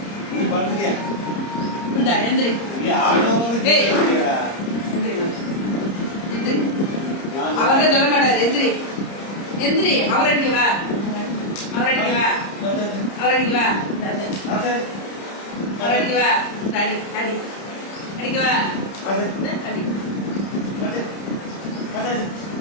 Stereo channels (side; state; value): right; late; 30 ms